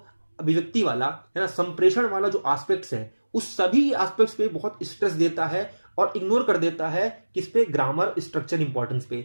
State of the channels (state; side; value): inverted; both; correlation -1.00